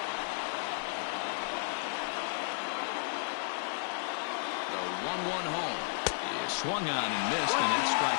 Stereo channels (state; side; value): silent; right; digital silence